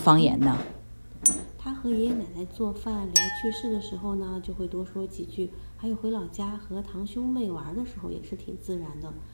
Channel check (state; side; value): inverted; both; correlation -1.00